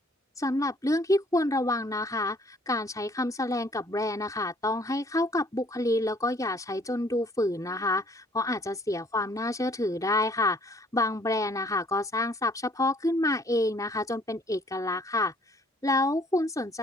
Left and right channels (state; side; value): normal; both; correlation 0.60